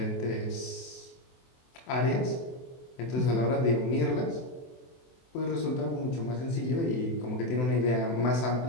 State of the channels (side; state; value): right; late; 24 ms